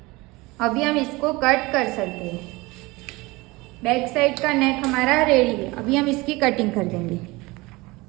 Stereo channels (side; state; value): left; quieter; 22.6 dB